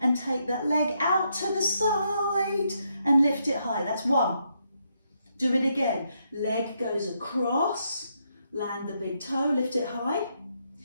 take that leg out to the side, and lift it high. That's 1. Do it again. Leg goes across, land the big toe, lift it high.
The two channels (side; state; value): both; inverted; correlation -0.78